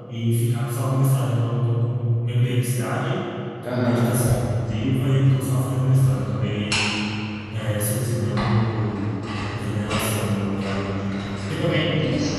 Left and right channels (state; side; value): identical; both; correlation 1.00